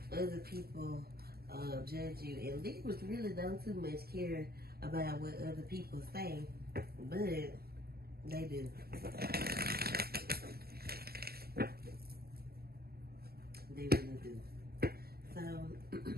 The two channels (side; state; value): left; late; 0.45 ms